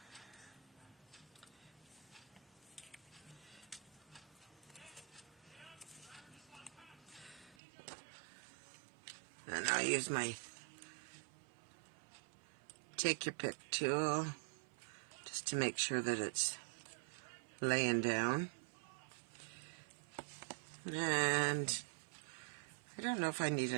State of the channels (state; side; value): drops out; left; at 7.6 s